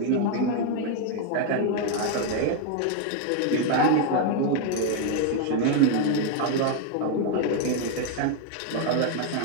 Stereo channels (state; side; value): different; both; correlation 0.01